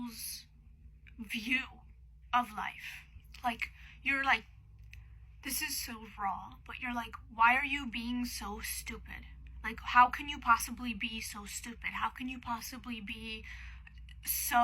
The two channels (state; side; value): identical; both; correlation 1.00